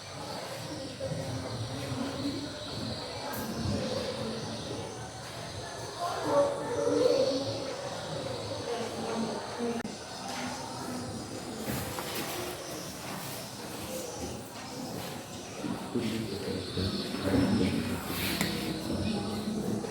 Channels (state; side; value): identical; both; correlation 1.00